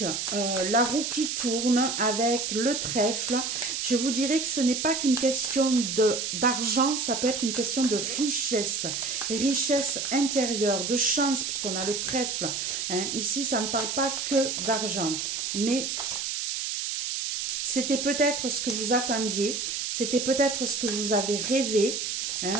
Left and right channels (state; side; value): noise; right; hiss, 2 dB below the sound